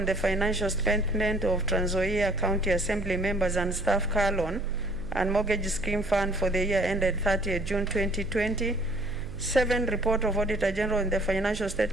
the financial statement of Trans Nzoia County Assembly Members and Staff Car Loan and Mortgage Scheme Fund for the year ended 30th June 2020. 7. Report of Auditor General on the financial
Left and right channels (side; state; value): right; noise; hum, 12 dB below the sound